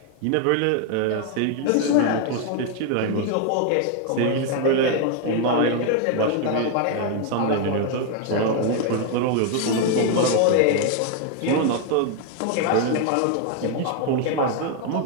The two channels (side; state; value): both; different; correlation 0.00